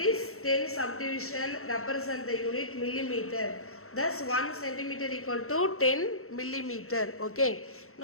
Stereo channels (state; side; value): late; right; 0.63 ms